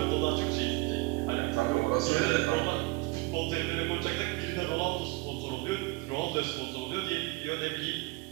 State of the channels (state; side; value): quieter; left; 23.1 dB